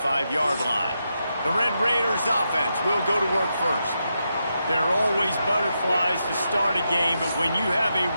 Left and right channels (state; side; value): inverted; both; correlation -0.85